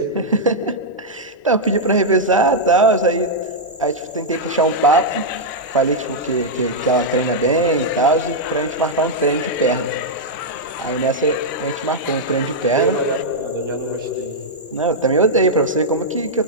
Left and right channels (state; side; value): normal; both; correlation -0.05